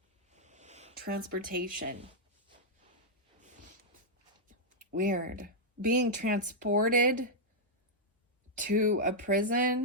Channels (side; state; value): both; normal; correlation -0.06